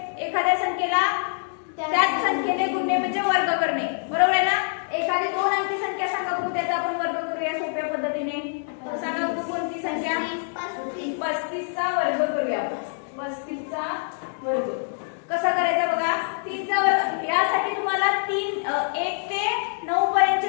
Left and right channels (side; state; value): right; silent; digital silence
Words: एखाद्या संख्येला त्याच संख्येने गुणणे म्हणजे वर्ग करणे. बरोबर आहे ना? एखादी 2 अंकी संख्या सांगा बघू, त्याचा आपण वर्ग करूया सोप्या पद्धतीने. सांगा बघू कोणती संख्या? 35 चा वर्ग करूया. 35 चा वर्ग कसा करायचा बघा. 3 चा वर्ग यासाठी तुम्हाला 1 ते 9 पर्यंतचे